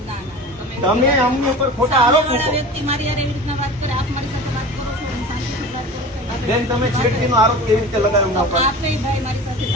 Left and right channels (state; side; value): normal; both; correlation 0.35